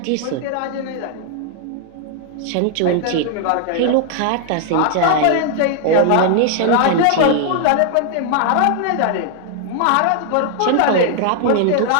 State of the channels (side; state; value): both; different; correlation 0.00